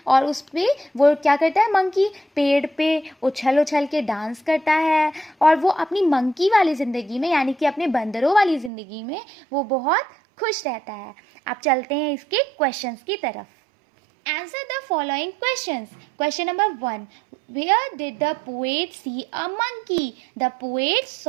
और उस पर वो क्या करता है, मंकी पेड़ पे उछल उछल के डांस करता है, और वो अपनी मंकी वाली ज़िंदगी में, यानी कि अपने बंदरों वाली ज़िंदगी में वो बहुत खुश रहता है. अब चलते हैं इसके क्वेश्चंस की तरफ. Answer the following questions. Question number 1. Where did the poet see a monkey? The poet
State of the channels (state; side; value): drops out; left; at 8.7 s